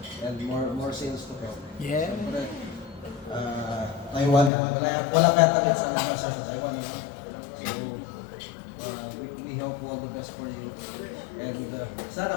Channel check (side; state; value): right; drops out; at 4.5 s